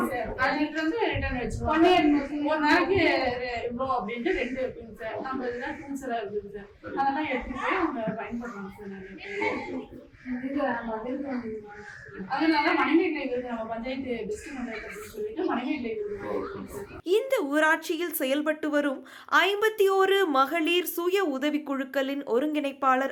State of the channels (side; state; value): both; identical; correlation 1.00